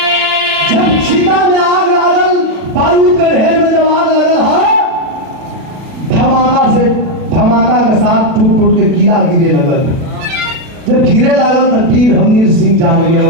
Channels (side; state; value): left; late; 37 ms